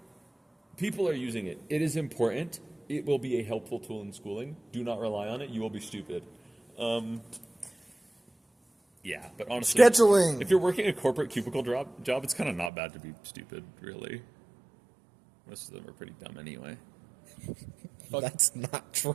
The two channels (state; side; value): drops out; left; at 12.7 s